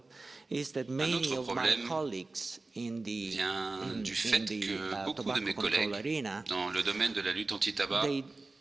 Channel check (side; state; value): left; quieter; 3.4 dB